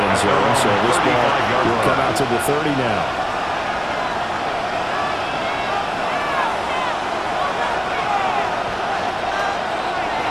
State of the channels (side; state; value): both; identical; correlation 1.00